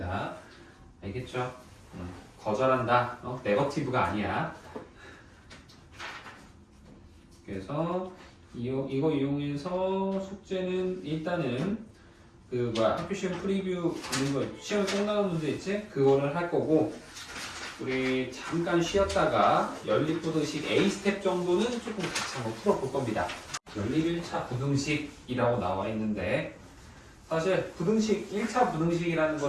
알겠죠? 거절한다. 네거티브가 아니야. 그래서 이거 이용해서 숙제는 일단은 그 학교 시험 프리뷰 있는 거 시험 꼭 나온 문제 있지? 그거를 할 거고 우리 잠깐 쉬었다가 연립부등식 A 스텝 정도는 조금 같이 한번 풀어볼 겁니다. 연립 1차 부등식이라고 나와 있는데 사실 부등식 1차 부등식이라는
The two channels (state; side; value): identical; both; correlation 1.00